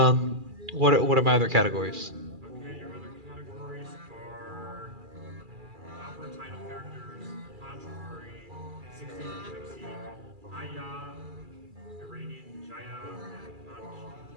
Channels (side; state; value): left; late; 2.4 ms